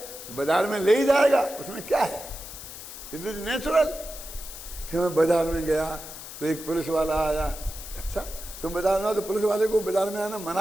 बाजार में ले ही जाएगा, उसमें क्या है, इट इज नेचुरल। फिर मैं बाजार में गया तो एक पुलिस वाला आया। अच्छा, तुम बाजार में आओ तो पुलिस वाले को बाजार में आना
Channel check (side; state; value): left; noise; hiss, 12 dB below the sound